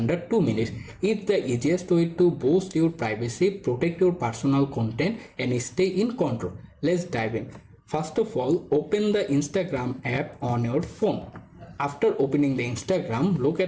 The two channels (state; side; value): identical; both; correlation 1.00